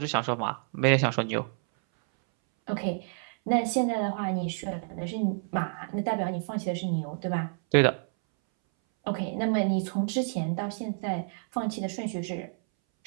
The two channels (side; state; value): left; silent; 59 dB below the other